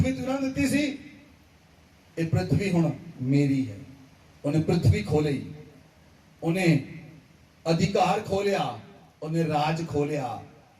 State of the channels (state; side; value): identical; both; correlation 1.00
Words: तू उन्होंने दी सी, ये पृथ्वी हुण मेरी है। उन्हें पृथ्वी खोली, उन्हें अधिकार खोलिया, उन्हें राज खोलिया